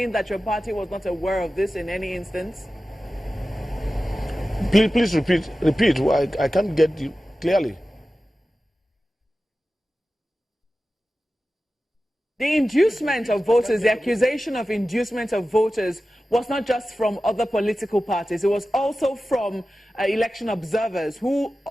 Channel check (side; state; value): both; normal; correlation 0.95